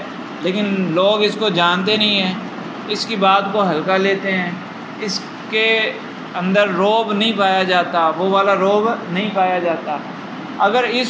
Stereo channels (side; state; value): both; identical; correlation 1.00